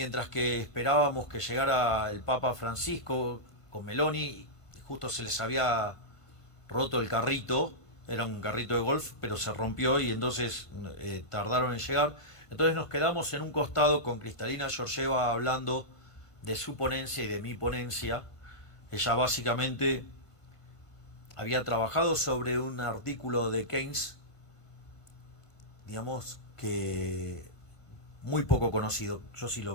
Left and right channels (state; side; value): late; right; 1.5 ms